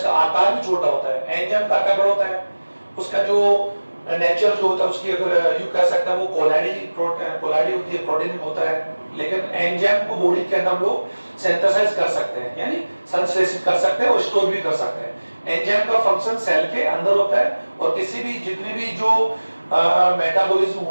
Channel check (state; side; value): inverted; both; correlation -1.00